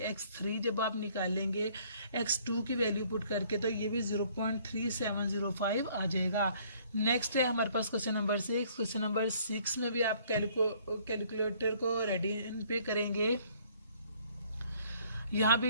x3 जब आप निकालेंगे x2 की वैल्यू पुट करके तो ये भी 0.3705 आ जाएगा। नेक्स्ट है हमारे पास क्वेश्चन नंबर 6। क्वेश्चन नंबर 6 में भी आप कैलकुलेटर को रेडी पे करेंगे। यहाँ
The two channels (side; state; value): both; inverted; correlation -0.60